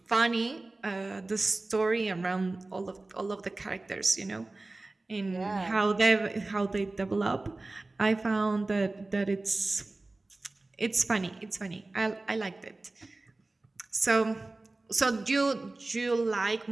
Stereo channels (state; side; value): quieter; left; 3.1 dB